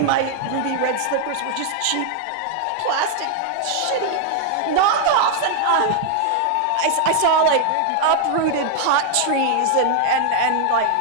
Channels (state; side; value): different; both; correlation 0.00